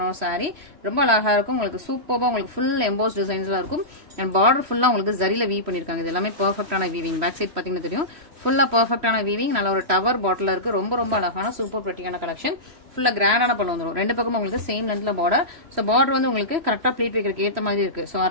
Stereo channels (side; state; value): left; late; 3.0 ms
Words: ஒரு சாரி. ரொம்ப அழகா இருக்கும். உங்களுக்கு சூப்பரா உங்களுக்கு ஃபுல் எம்போஸ் டிசைன்ஸ்ல இருக்கும். அண்ட் பார்டர் ஃபுல்லா உங்களுக்கு ஜரில வீவ் பண்ணிருக்காங்க. இது எல்லாமே பெர்ஃபெக்டான வீவிங். பேக் சைட் பாத்தீங்கன்னா தெரியும், ஃபுல்லா பெர்ஃபெக்டான வீவிங். நல்ல ஒரு டவர் பாட்டில் இருக்கு. ரொம்ப ரொம்ப அழகான சூப்பர் பிரிட்டியான கலெக்ஷன். ஃபுல்லா கிராண்டான பண்ண வந்துடும். ரெண்டு பக்கம் உங்களுக்கு சேம் லென்த்ல பார்டர். ஸோ பார்டர் வந்து உங்களுக்கு கரெக்டா ப்ளீட் வைக்கிறதுக்கு ஏத்த மாதிரி இருக்கு. ஸோ